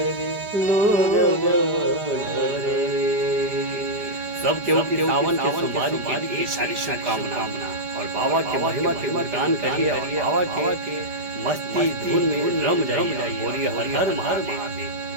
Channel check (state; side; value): late; left; 5.0 ms